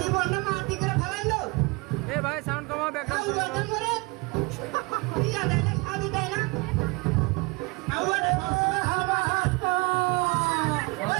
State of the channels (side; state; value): left; quieter; 26.8 dB